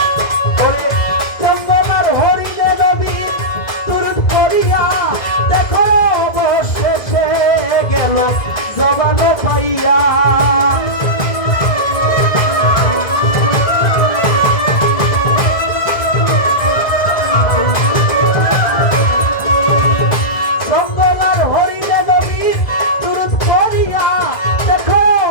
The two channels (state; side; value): late; right; 1.9 ms